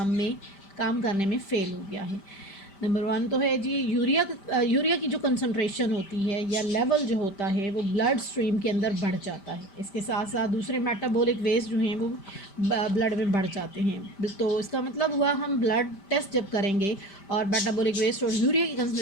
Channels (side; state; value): right; late; 5.1 ms